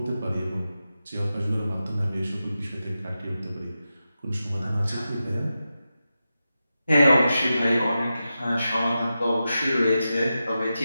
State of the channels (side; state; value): both; inverted; correlation -0.91